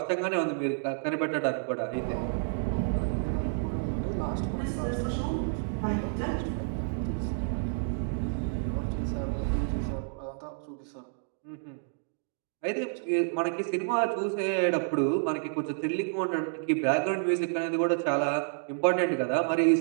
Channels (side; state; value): left; silent; digital silence